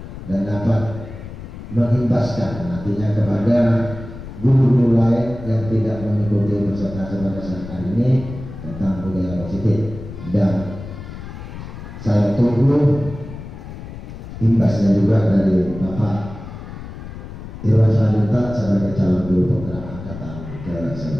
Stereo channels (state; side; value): noise; left; rumble, 12 dB below the sound